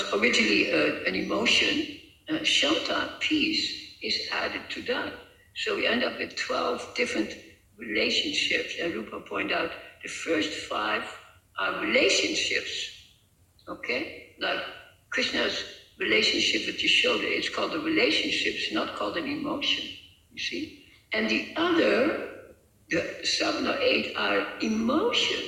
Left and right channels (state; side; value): identical; both; correlation 1.00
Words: originally an emotion, Shanta, peace, is added to that. So we end up with 12 different relationships, and Rupa pointed out the first 5 are relationships, okay? Like Krishna's relationship with Yashoda, it's called a relationship, it's not called an emotion, you see? And the other, the 7 or 8 are